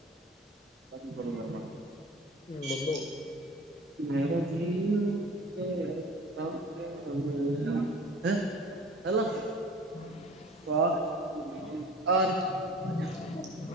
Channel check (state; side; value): normal; both; correlation 0.43